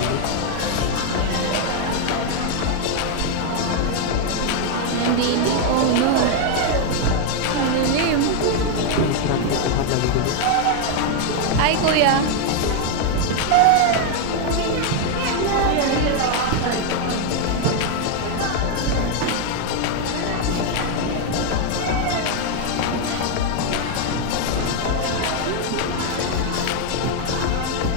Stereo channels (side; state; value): both; different; correlation 0.01